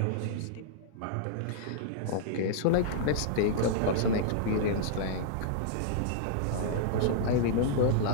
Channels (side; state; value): both; different; correlation -0.01